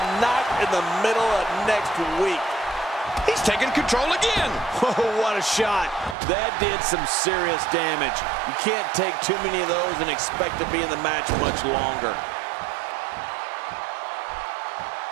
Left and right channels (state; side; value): drops out; left; at 6.2 s